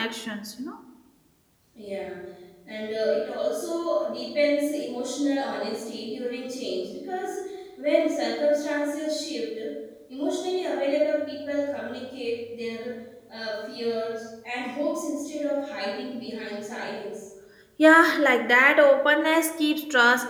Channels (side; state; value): both; identical; correlation 1.00